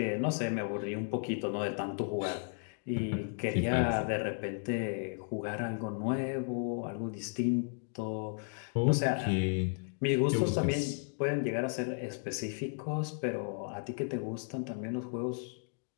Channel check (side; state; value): right; silent; 55 dB below the other